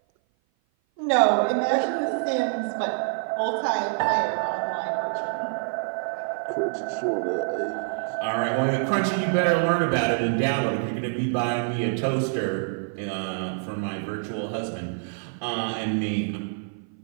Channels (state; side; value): silent; left; 56 dB below the other